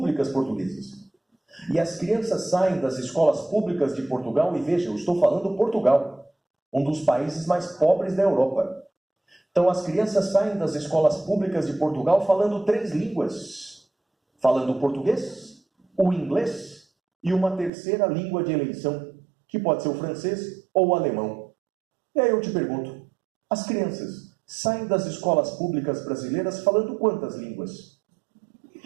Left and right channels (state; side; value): drops out; left; at 17.7 s